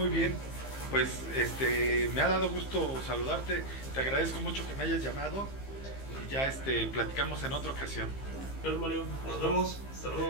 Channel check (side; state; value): right; late; 15 ms